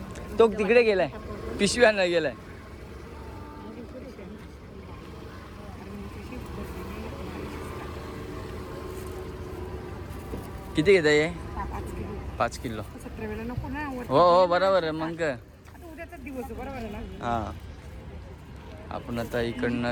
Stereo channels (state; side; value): identical; both; correlation 1.00